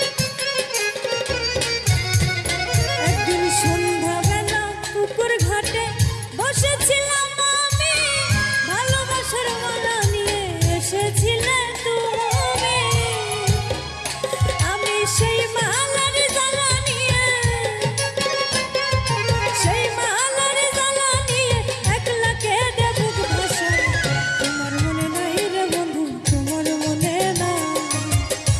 একদিন সন্ধ্যাবেলা পুকুর ঘাটে বসেছিলাম আমি, ভালোবাসার মালা নিয়ে এসেছিলে তুমি। আমি সেই মালার জ্বালা নিয়ে, সেই মালার জ্বালা নিয়ে একলা কেঁদে বুক ভাসাই। তোমার মনে নাই রে বন্ধু, তোমার মনে নাই,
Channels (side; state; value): both; identical; correlation 1.00